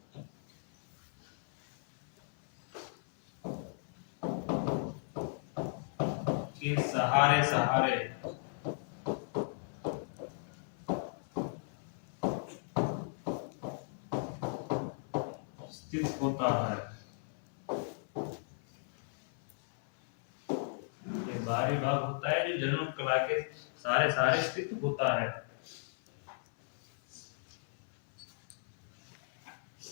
के सहारे सहारे स्थित होता है, ये बाहरी भाग होता है जो जनन कला के सारे सहारे स्थित होता है।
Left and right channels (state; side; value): silent; right; 54 dB below the other